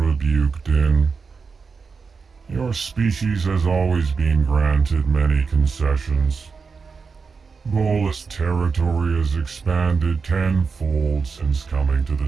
Din. Your species has always been granted many concessions. Volus territory has expanded tenfold since coming to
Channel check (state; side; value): quieter; left; 5.0 dB